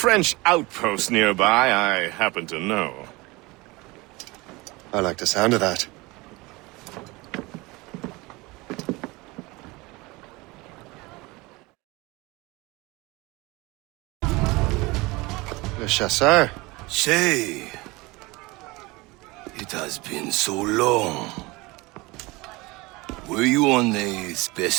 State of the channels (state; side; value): quieter; left; 23.2 dB